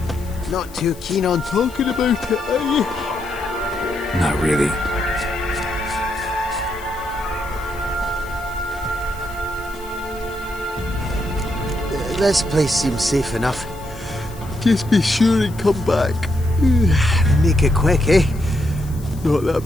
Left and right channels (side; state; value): left; noise; hiss, 21 dB below the sound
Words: Not too keen on talking about it, are you? Not really. This place seems safe enough. Just be sure and come back. Make it quick, eh? Not